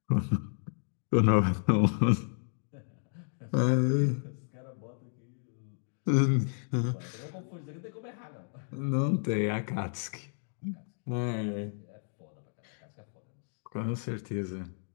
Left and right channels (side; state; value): right; silent; digital silence